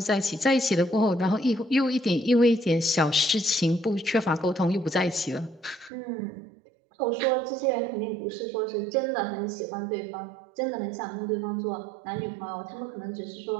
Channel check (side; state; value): left; drops out; at 5.9 s